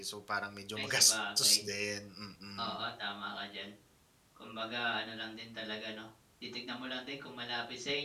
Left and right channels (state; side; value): identical; both; correlation 1.00